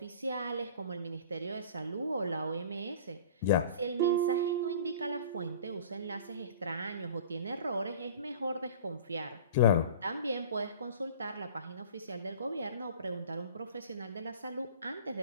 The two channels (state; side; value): inverted; both; correlation -0.42